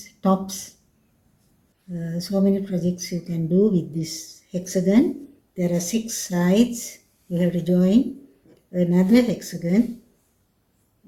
tops. So many projects you can do with this hexagon. There are 6 sides. You have to join another hexagon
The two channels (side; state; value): both; identical; correlation 1.00